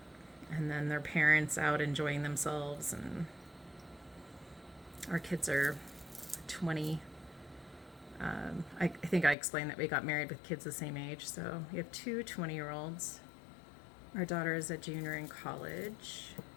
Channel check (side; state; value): right; drops out; at 9.3 s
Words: and then their parents out enjoying themselves. And our kids are 20. I think I explained that we got married with kids the same age. So we have two 20-year-olds. Our daughter is a junior in college.